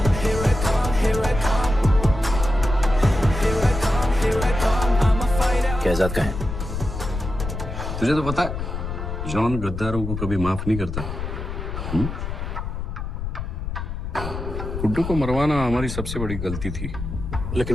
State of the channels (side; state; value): left; noise; rumble, 5 dB below the sound